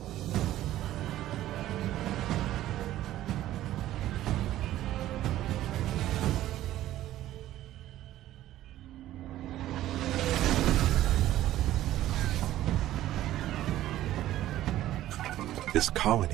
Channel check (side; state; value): left; quieter; 14.0 dB